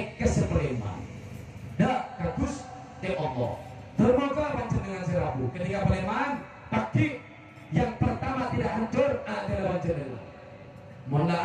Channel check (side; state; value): both; identical; correlation 1.00